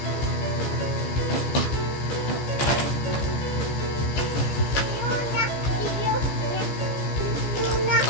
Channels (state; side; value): late; right; 15 ms